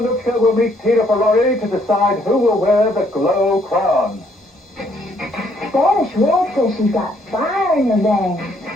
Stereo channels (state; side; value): normal; both; correlation 0.67